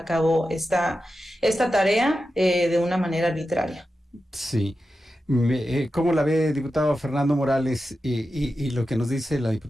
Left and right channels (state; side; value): normal; both; correlation 0.91